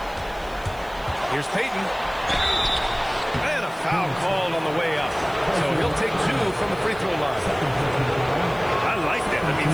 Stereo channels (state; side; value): noise; right; hiss, 24 dB below the sound